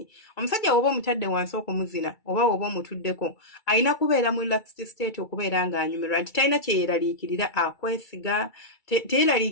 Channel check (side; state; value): right; late; 2.3 ms